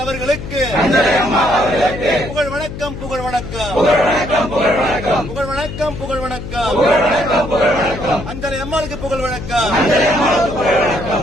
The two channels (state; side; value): noise; left; hum, 9 dB below the sound